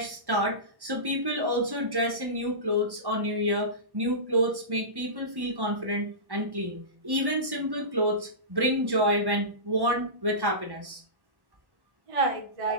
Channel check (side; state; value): left; late; 1.1 ms